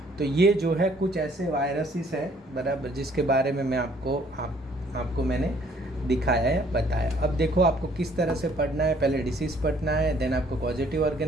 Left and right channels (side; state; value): both; normal; correlation 0.61